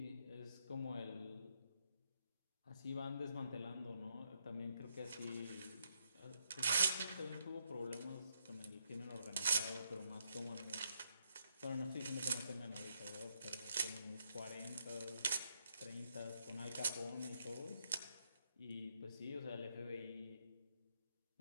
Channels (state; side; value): inverted; both; correlation -0.76